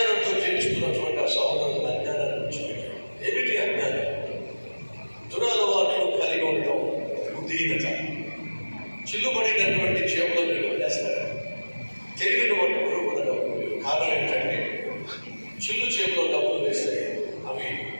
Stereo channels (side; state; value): both; inverted; correlation -1.00